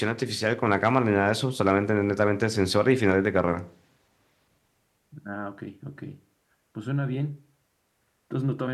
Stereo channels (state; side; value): identical; both; correlation 1.00